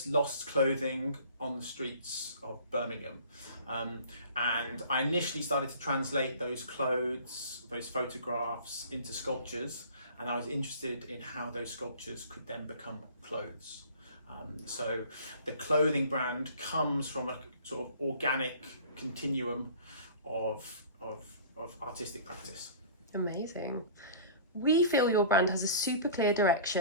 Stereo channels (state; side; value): inverted; both; correlation -0.44